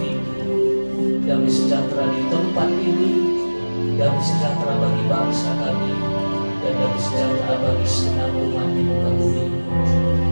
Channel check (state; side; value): inverted; both; correlation -1.00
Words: tinggi. Damai sejahtera di tempat ini, damai sejahtera bagi bangsa kami, dan damai sejahtera bagi segenap umat di muka bumi.